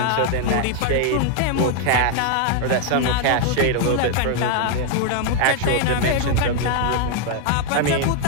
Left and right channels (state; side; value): different; both; correlation 0.00